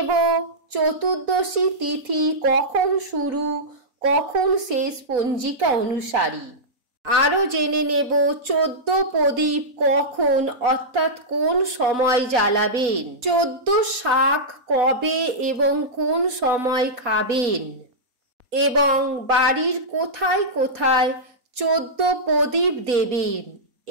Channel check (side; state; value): left; late; 4.1 ms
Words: চতুর্দশী তিথি কখন শুরু, কখন শেষ পঞ্জিকা অনুসারী। আরও জেনে নেব 14 প্রদীপ কখন অর্থাৎ কোন সময় জ্বালাবেন, 14 শাক কবে এবং কোন সময় খাবেন, এবং বাড়ির কোথায় কোথায় 14 প্রদীপ দেবেন।